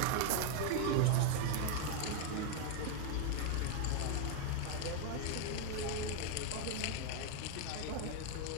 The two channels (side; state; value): both; different; correlation 0.01